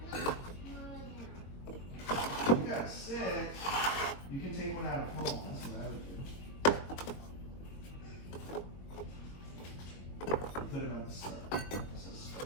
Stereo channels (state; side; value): late; right; 21 ms